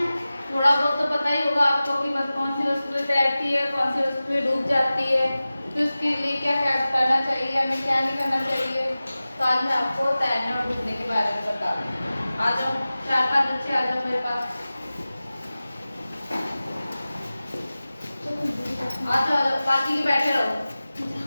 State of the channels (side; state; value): both; inverted; correlation -0.96